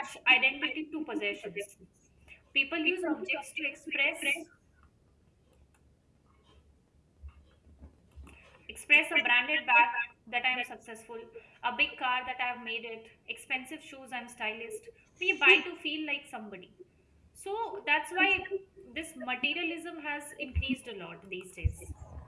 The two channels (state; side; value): identical; both; correlation 1.00